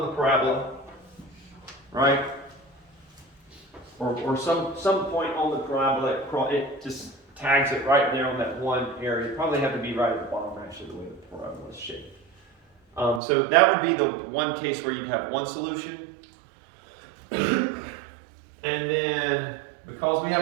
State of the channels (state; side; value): drops out; left; at 13.2 s